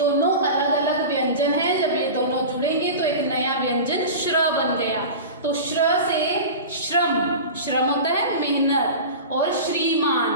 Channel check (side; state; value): both; inverted; correlation -0.31